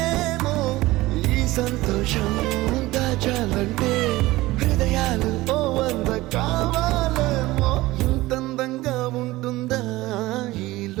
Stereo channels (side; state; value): left; quieter; 18.7 dB